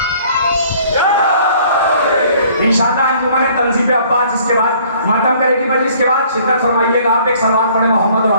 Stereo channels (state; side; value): inverted; both; correlation -0.57